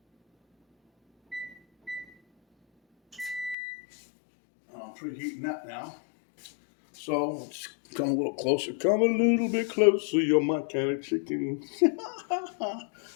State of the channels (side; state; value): right; drops out; at 3.6 s